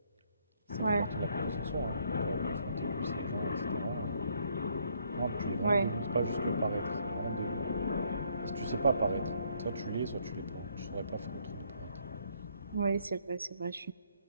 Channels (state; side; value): inverted; both; correlation -0.69